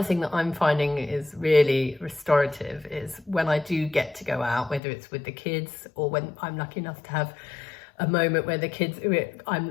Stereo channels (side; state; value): right; drops out; at 4.8 s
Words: thing that I'm finding is really restorative is when I do get to go out, whether it's with the kids or when I'm lucky enough to have a moment where the kids,